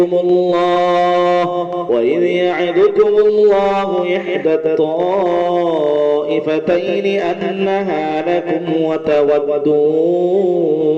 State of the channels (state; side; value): identical; both; correlation 1.00